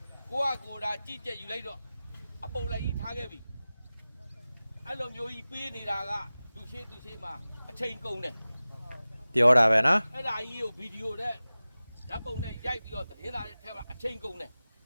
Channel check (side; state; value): both; inverted; correlation -0.97